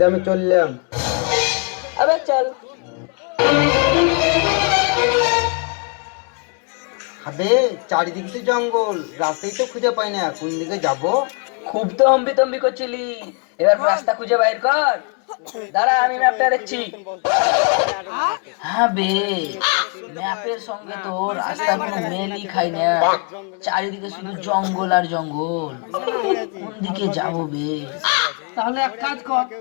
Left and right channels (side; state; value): right; quieter; 36.2 dB